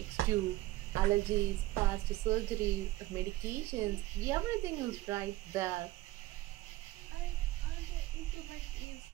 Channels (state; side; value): quieter; left; 17.7 dB